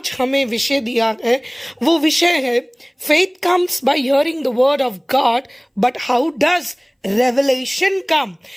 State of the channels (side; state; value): both; identical; correlation 1.00